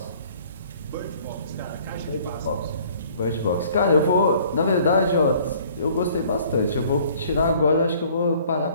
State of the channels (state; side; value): inverted; both; correlation -0.56